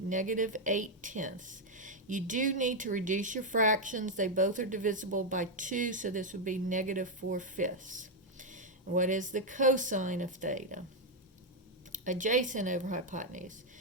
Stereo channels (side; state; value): both; normal; correlation 0.01